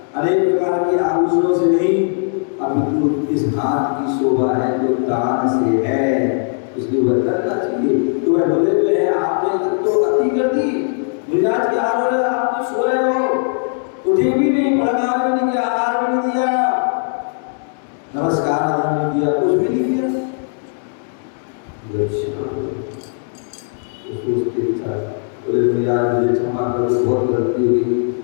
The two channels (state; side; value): silent; right; 61 dB below the other